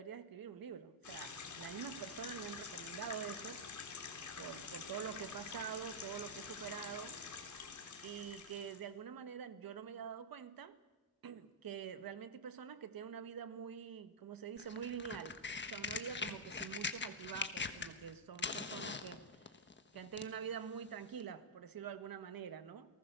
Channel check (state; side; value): normal; both; correlation -0.08